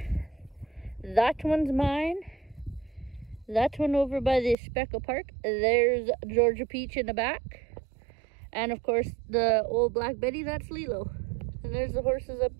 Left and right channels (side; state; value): left; drops out; at 4.5 s